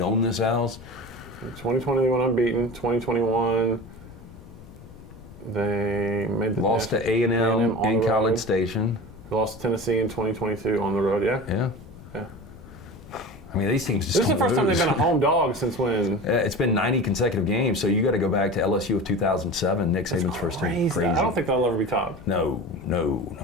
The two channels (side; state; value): left; noise; rumble, 18 dB below the sound